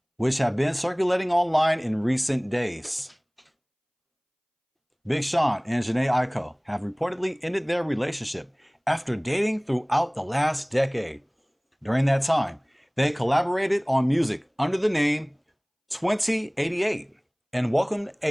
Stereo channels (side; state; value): both; identical; correlation 1.00